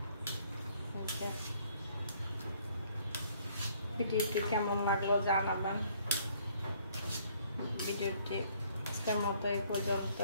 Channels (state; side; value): inverted; both; correlation -0.62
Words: ভিডিওটি কেমন লাগলো জানাবেন। ভিডিওটি আজকের মতো এই